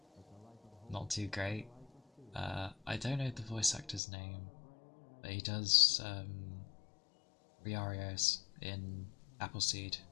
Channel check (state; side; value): drops out; right; at 4.0 s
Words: not too great, I don't know the voice actor's name, but he does Riarios in Appleseed,